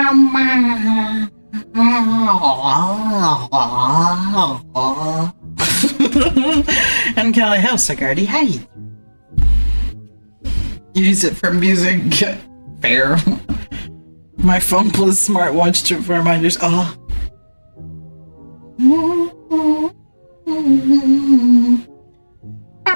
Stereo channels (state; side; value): inverted; both; correlation -1.00